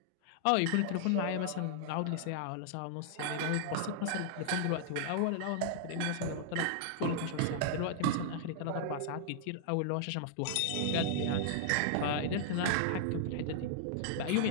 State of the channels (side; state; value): both; different; correlation -0.01